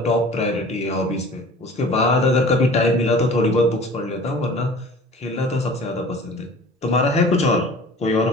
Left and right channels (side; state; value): both; normal; correlation 0.44